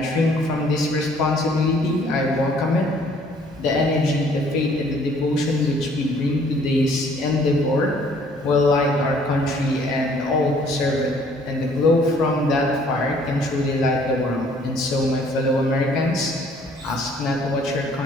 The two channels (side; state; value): both; normal; correlation 0.59